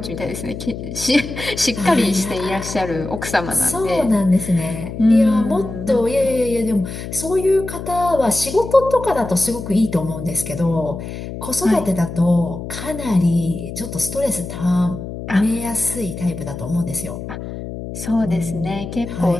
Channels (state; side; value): noise; left; hum, 9 dB below the sound